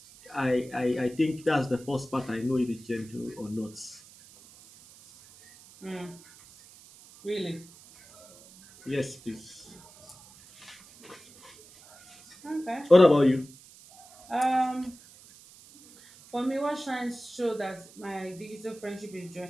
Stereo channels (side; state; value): right; noise; hiss, 22 dB below the sound